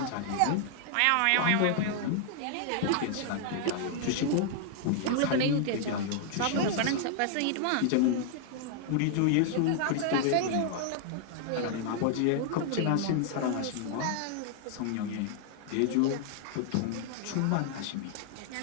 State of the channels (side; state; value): both; different; correlation 0.00